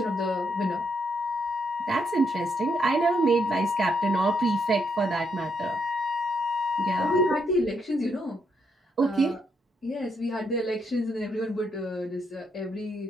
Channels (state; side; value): normal; both; correlation 0.76